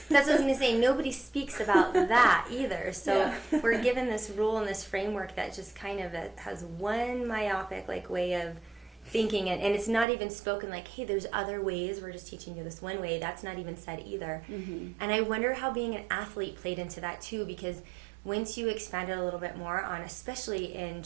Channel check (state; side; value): drops out; left; at 10.1 s